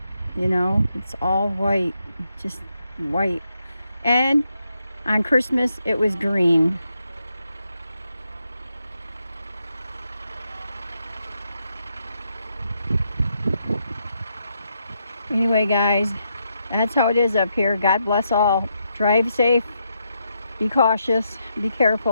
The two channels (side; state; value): both; inverted; correlation -0.81